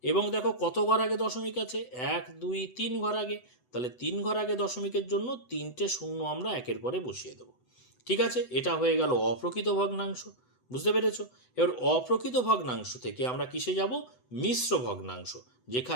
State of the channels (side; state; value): right; late; 8.0 ms